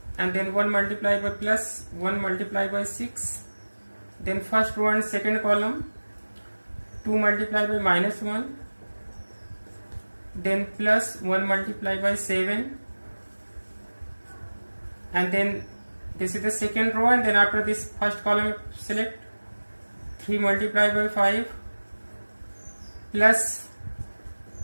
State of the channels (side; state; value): both; inverted; correlation -1.00